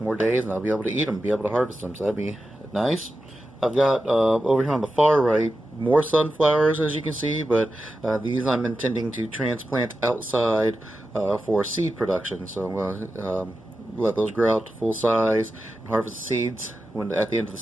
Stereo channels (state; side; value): normal; both; correlation 0.91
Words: more days, and I'll be able to eat them, be able to harvest them, so that'd be nice. I've got over here on the far right more sunflowers, as you can see, but these I'm intending to transplant outside for seed production. So I'm going to let those grow out to full size and harvest the seeds at the end of the